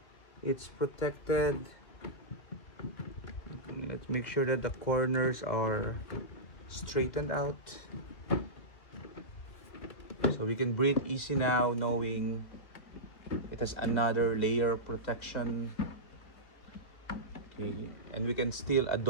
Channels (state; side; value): late; right; 2.1 ms